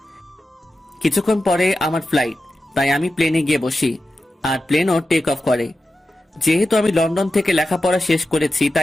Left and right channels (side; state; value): both; normal; correlation 0.92